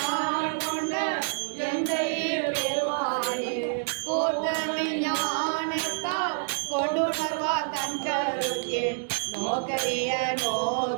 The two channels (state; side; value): silent; left; digital silence